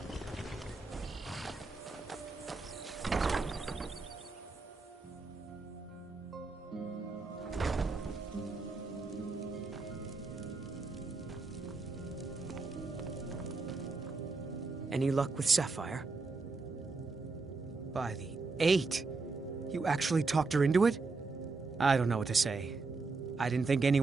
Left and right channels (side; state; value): left; quieter; 3.9 dB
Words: Any luck with Sapphire? By the 8! You actually talked her into it? I don't know what to say. I didn't think